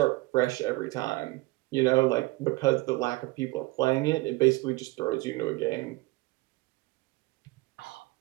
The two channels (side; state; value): left; quieter; 21.9 dB